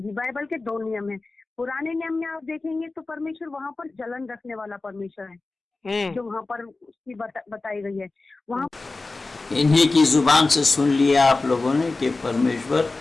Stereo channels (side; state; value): right; quieter; 3.5 dB